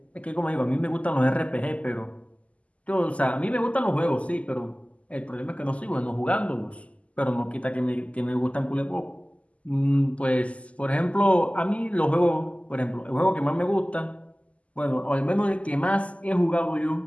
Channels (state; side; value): late; right; 0.065 ms